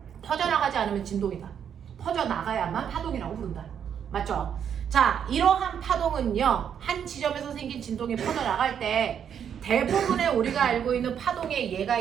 퍼져나가지 않으면 진동이다. 퍼져나가야만 파동이라고 부른다. 맞죠? 자, 이러한 파동은요, 한 지점에서 생긴 진동이 퍼져나갈 때 대부분의 우리가 알고 있는 파동의 예가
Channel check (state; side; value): quieter; left; 8.3 dB